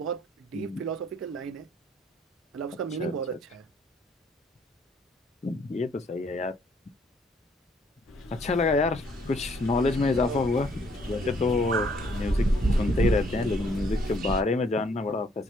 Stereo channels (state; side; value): normal; both; correlation 0.65